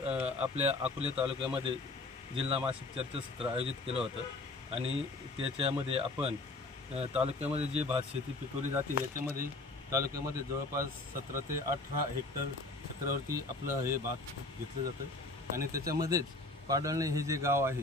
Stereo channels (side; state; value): right; quieter; 3.1 dB